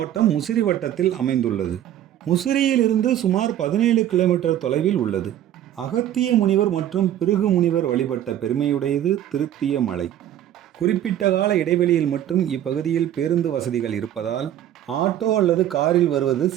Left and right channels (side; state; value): left; quieter; 11.5 dB